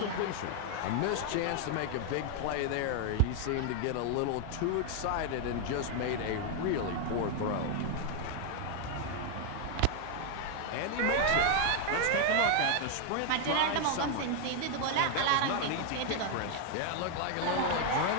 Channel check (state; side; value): different; both; correlation 0.01